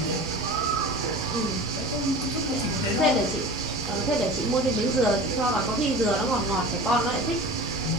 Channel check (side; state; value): both; normal; correlation 0.36